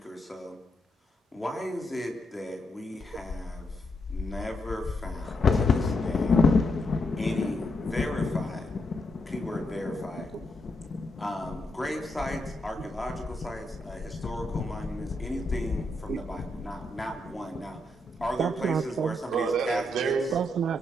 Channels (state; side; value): normal; both; correlation 0.80